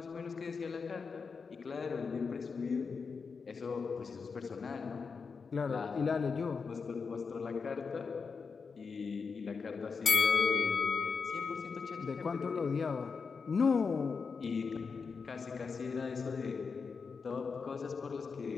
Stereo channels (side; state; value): right; quieter; 5.2 dB